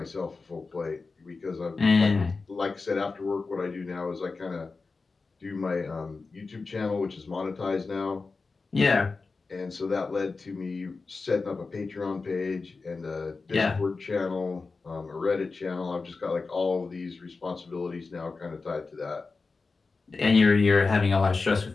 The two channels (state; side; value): quieter; right; 4.1 dB